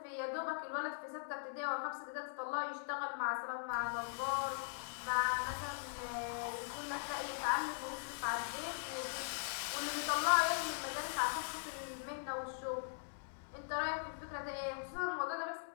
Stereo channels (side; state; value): right; silent; digital silence